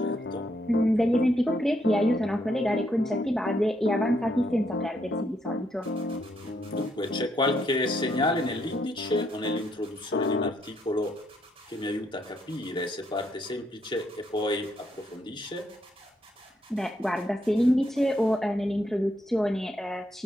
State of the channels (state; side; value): normal; both; correlation 0.75